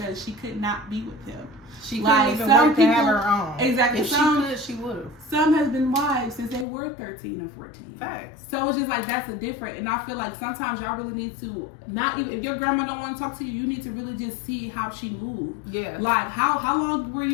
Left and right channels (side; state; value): right; drops out; at 6.7 s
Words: she could not be with him. She couldn't even work to have her own. Exactly. If she could, she would have. Some has been wives since they were 13 or 14. Facts. So it's just like, that's a different. And I feel like sometimes y'all really need to, not even, if your grandma don't want to talk to you, you need to really just see how she moved. Yeah. Like, how long were